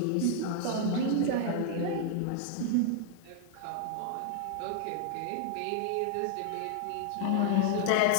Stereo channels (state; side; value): different; both; correlation 0.00